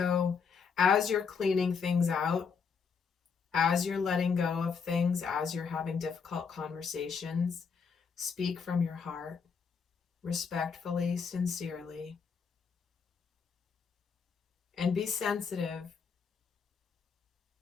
as you're cleaning things out, as you're letting go of things, as you're having difficult conversations, speak from your heart, respectfully, sincerely, and be sensitive.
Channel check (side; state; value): right; quieter; 5.9 dB